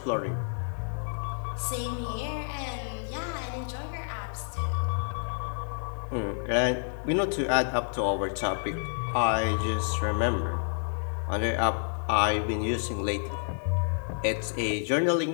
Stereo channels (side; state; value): right; silent; digital silence